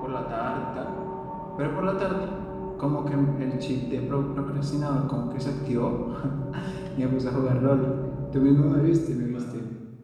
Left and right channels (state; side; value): identical; both; correlation 1.00